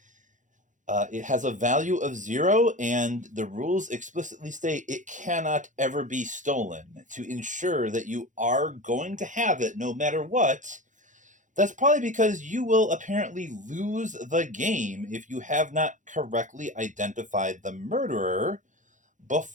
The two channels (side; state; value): left; late; 0.36 ms